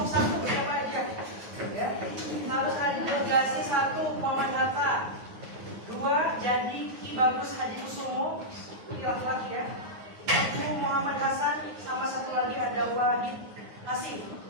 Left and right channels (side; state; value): left; late; 9.5 ms